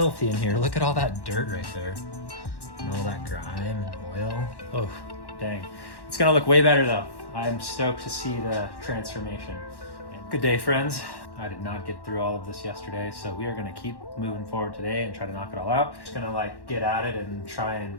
in here. Look at all that dirt right there and all that grime and oil. Oh, dang. It's gonna look way better though. I'm stoked to see the transformation. Good day, friends. I did not get through all of this yesterday, so we are gonna keep moving forward today and try to knock it all out. Just gonna like get at it and try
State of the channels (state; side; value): late; right; 1.1 ms